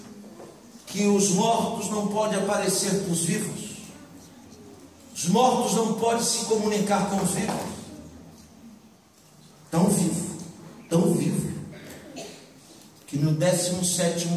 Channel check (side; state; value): both; identical; correlation 1.00